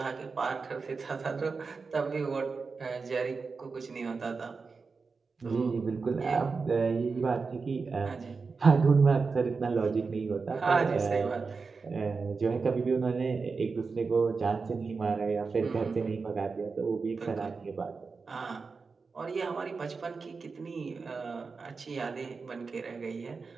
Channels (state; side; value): quieter; left; 4.6 dB